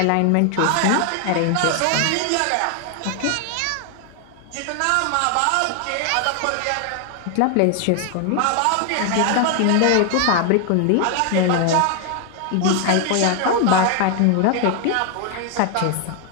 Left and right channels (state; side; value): different; both; correlation 0.00